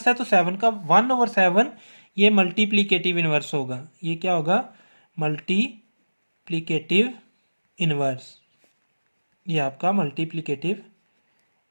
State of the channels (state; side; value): inverted; both; correlation -1.00